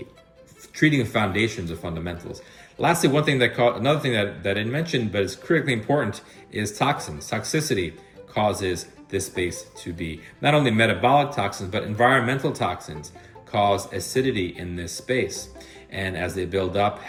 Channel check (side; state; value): both; identical; correlation 1.00